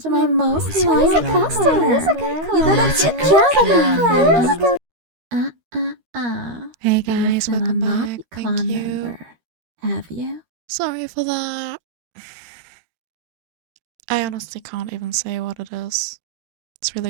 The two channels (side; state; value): left; late; 13 ms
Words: to my most loyal customer. You did a good job, Hey guys, welcome back. Thank you. Member. Have you? Sorry for that. I honestly can't even say what it is. It's